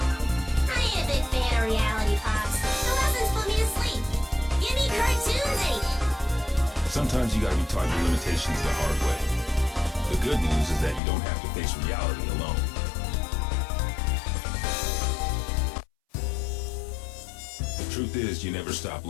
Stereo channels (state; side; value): drops out; right; at 11.0 s